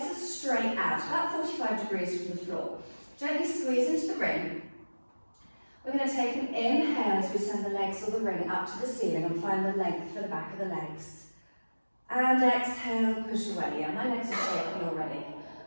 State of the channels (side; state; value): both; inverted; correlation -1.00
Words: are straight out, about 45 degrees from the floor. Gently squeeze into the ring. We're going to take an inhale as we send the legs or the ring up to the ceiling and find the length for the back of the legs. And exhale, push away. Yeah, my legs are shaking already.